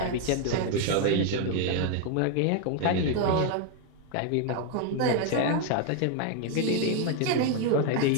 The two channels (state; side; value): different; both; correlation 0.00